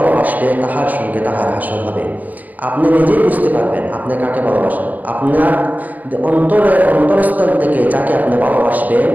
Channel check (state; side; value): late; left; 0.081 ms